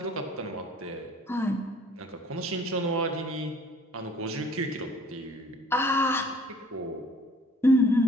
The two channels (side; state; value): both; normal; correlation 0.54